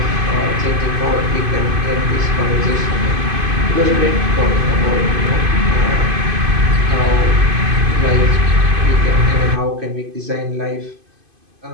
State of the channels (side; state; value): left; late; 2.5 ms